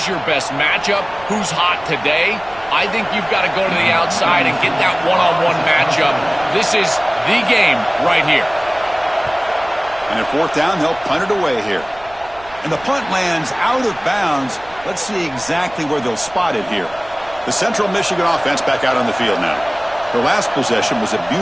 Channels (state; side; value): noise; right; rumble, 23 dB below the sound